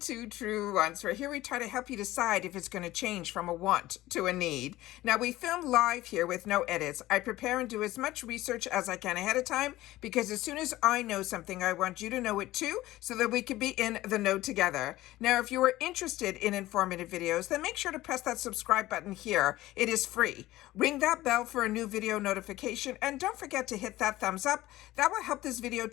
Truewants, where here we try to help you decide if it's going to change from a want to a need. Now we film live here with no edits. I prepare and do as much research as I can ahead of time because as soon as I know something, I want you to know it too so that we can be in the know together. Now if you are interested in informative videos, then make sure to press that subscribe button here. It is free. Ring that bell for a new video notification and don't forget to hit that thumbs up. That will help this video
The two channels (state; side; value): quieter; right; 16.6 dB